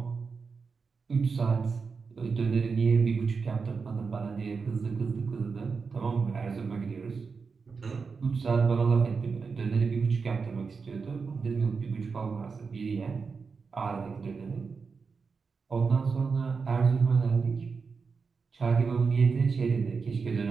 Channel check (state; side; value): quieter; left; 5.0 dB